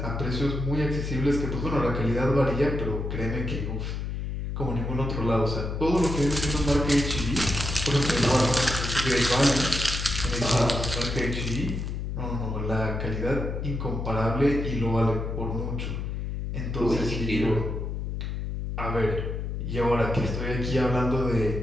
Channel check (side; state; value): left; noise; hum, 4 dB below the sound